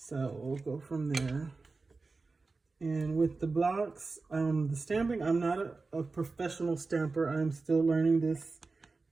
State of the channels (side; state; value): left; quieter; 3.9 dB